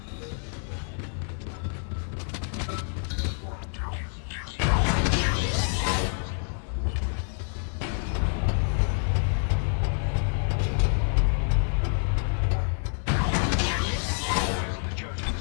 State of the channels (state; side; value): silent; right; 60 dB below the other